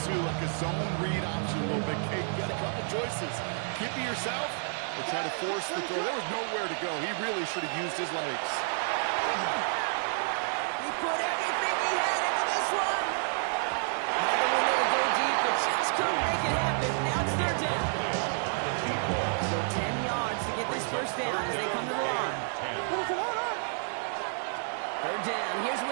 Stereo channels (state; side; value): silent; left; 58 dB below the other